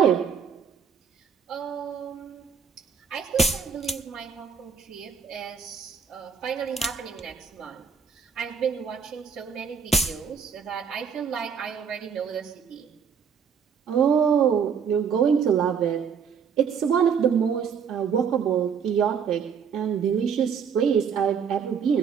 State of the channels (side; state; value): left; quieter; 6.7 dB